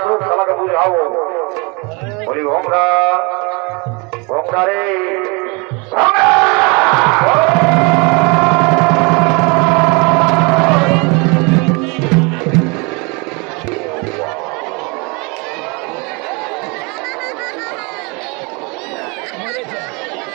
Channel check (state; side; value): quieter; left; 29.6 dB